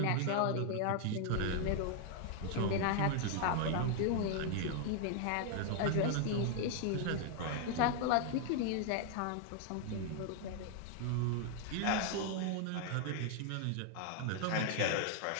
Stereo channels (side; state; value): both; different; correlation 0.00